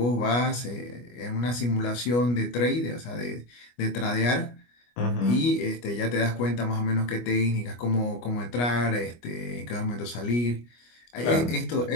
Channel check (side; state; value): right; late; 25 ms